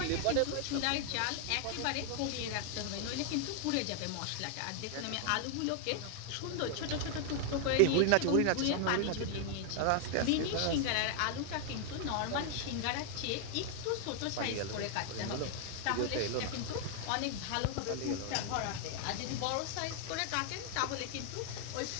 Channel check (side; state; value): both; different; correlation 0.00